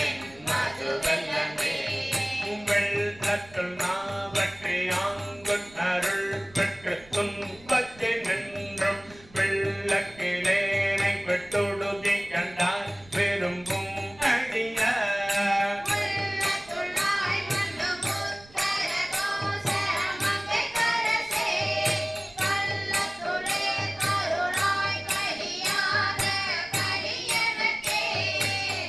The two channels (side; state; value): right; noise; rumble, 24 dB below the sound